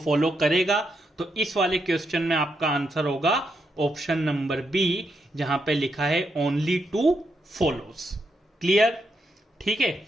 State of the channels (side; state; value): both; normal; correlation 0.81